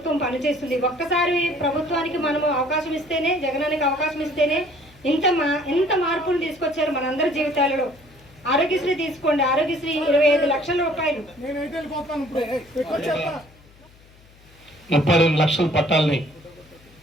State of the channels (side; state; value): left; noise; hum, 27 dB below the sound